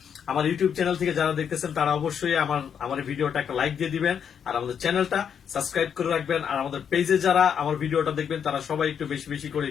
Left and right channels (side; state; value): right; quieter; 7.8 dB